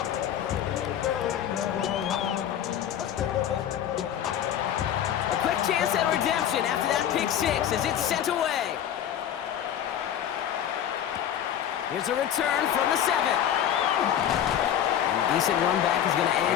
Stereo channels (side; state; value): right; quieter; 10.2 dB